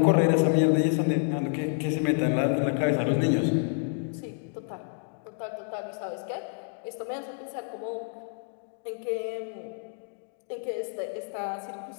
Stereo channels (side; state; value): right; silent; digital silence